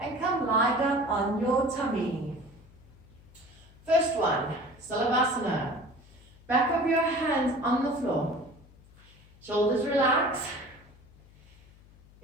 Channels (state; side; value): noise; left; hum, 25 dB below the sound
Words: come lie down on your tummy. First one, Salavasana. Back of your hands on the floor. Shoulders relax.